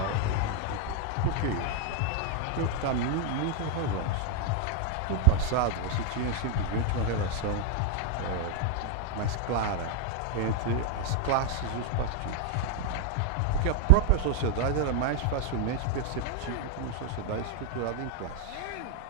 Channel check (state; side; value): different; both; correlation 0.00